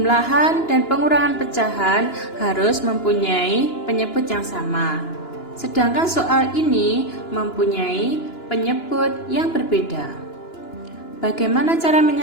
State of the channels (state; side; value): late; right; 2.9 ms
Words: dan pengurangan pecahan harus mempunyai penyebut yang sama. Sedangkan soal ini mempunyai penyebut yang berbeda. Bagaimana cara